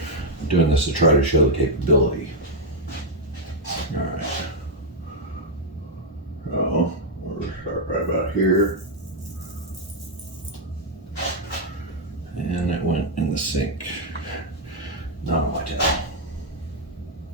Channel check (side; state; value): both; normal; correlation -0.01